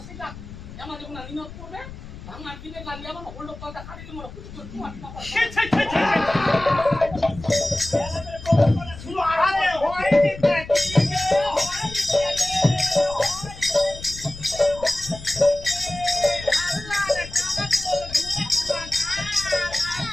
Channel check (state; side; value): noise; left; rumble, 14 dB below the sound